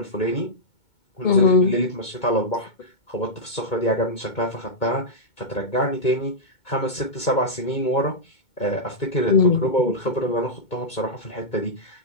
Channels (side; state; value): right; late; 2.2 ms